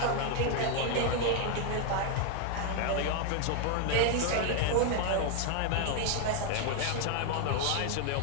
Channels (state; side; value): different; both; correlation 0.01